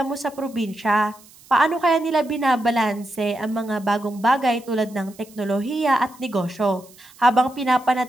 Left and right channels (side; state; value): right; noise; hiss, 25 dB below the sound